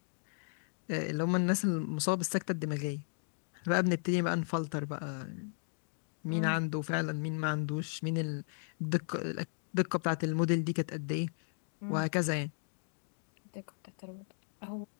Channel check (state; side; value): silent; right; digital silence